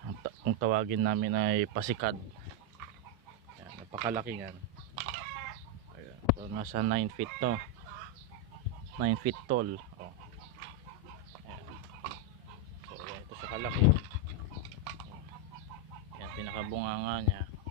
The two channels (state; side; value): normal; both; correlation 0.01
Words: Kung tawagin namin ay pasikad. Yan, napakalaki yan. Ayan. So nasa 9 feet to, 9 feet tall. Oh. Ayan. So ayan, ito sa kalaki. Ayan, pinakabunganga niya.